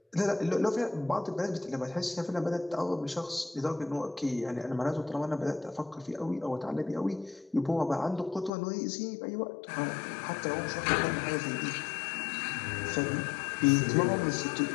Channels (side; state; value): right; drops out; at 8.5 s